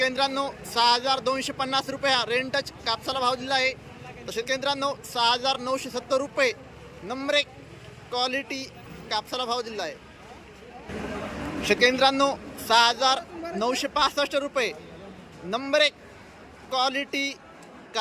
मित्रांनो, 6,250 रुपये हा रेंटच कापसाला भाव दिला आहे। तर शेतकरी मित्रांनो, 6,970 रुपये नंबर 1 क्वालिटी कापसाला भाव दिला आहे। शेतकरी मित्रांनो, 6,965 रुपये नंबर 1 क्वालिटी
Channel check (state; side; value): identical; both; correlation 1.00